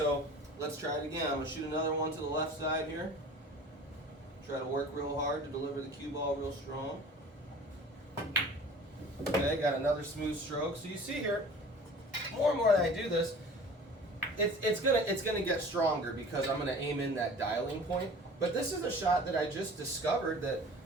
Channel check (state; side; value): normal; both; correlation 0.43